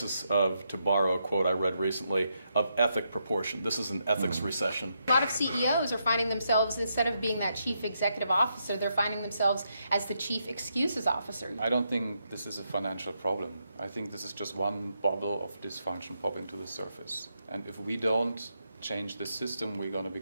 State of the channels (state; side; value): inverted; both; correlation -0.81